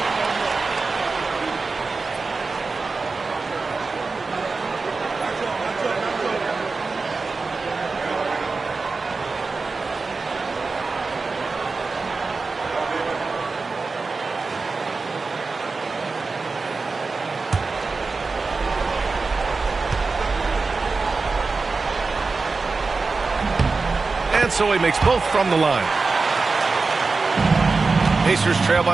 And so he makes both from the line. Pacers trail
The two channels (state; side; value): quieter; left; 4.1 dB